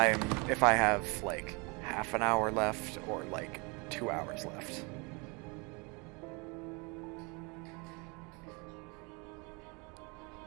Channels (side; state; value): left; quieter; 29.8 dB